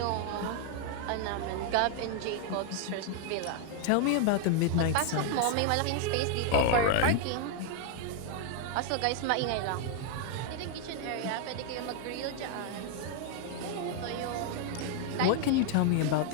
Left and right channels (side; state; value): both; different; correlation 0.00